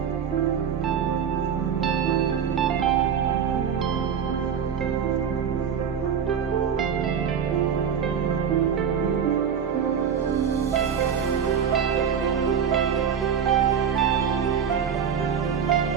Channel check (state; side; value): quieter; left; 7.6 dB